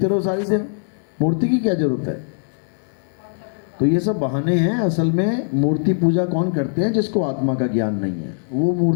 रहो सारी दिन। मूर्ति की क्या जरूरत है? तो ये सब बहाने हैं। असल में मूर्ति पूजा कौन करते हैं? जिसको आत्मा का ज्ञान नहीं है, वो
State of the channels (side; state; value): right; silent; digital silence